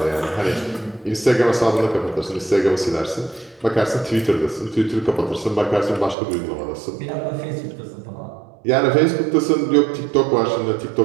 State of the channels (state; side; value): drops out; left; at 6.2 s